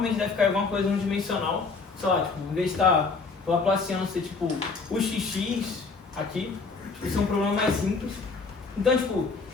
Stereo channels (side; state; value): right; quieter; 4.4 dB